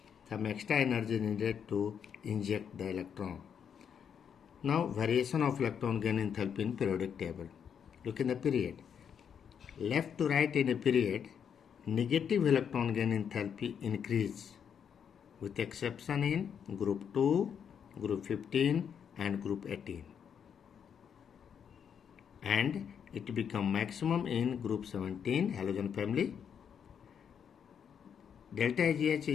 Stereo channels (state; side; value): quieter; right; 7.7 dB